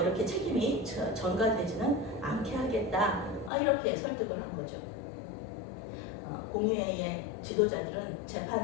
이렇게 책임이 전가되지는 않게 하겠다, 이렇게 설득을 한 거죠. 공회의 지도자들은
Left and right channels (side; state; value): right; drops out; at 3.5 s